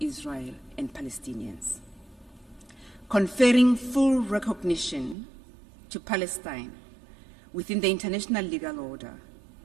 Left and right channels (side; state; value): left; drops out; at 5.2 s